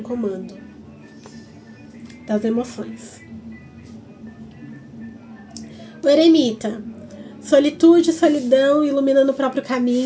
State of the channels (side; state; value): both; identical; correlation 1.00